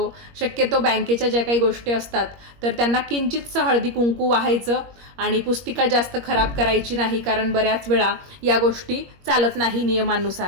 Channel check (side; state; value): left; late; 21 ms